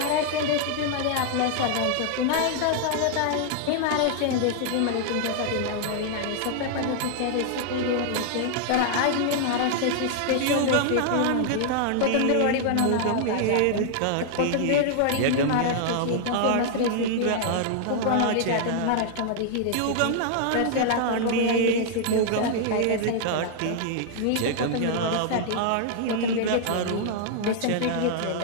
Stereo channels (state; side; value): different; both; correlation -0.01